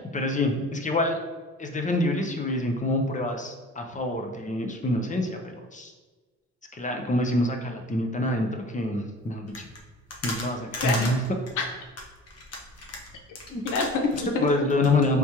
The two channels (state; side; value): normal; both; correlation 0.43